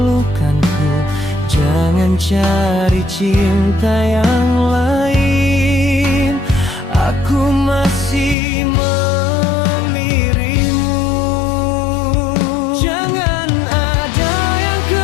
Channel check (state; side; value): drops out; right; at 8.3 s